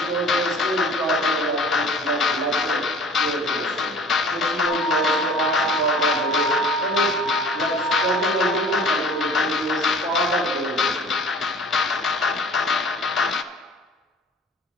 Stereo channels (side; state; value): both; normal; correlation 0.46